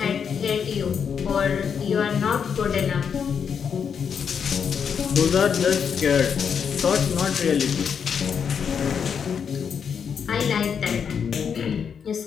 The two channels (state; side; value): quieter; right; 7.0 dB